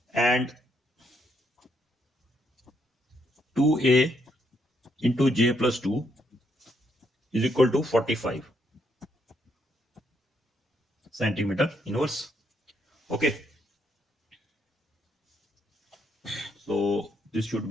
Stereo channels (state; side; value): normal; both; correlation 0.75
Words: and 2a into j plus 2 is equal to 45 centimeter inverse. Okay, so this should